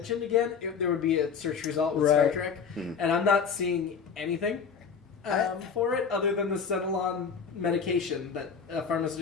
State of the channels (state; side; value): quieter; right; 6.2 dB